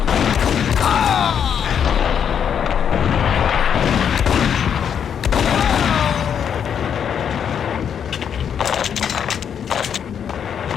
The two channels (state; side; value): quieter; right; 8.1 dB